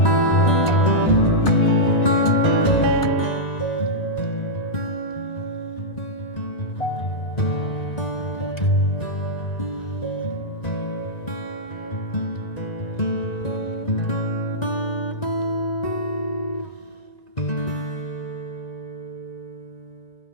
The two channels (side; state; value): right; late; 1.9 ms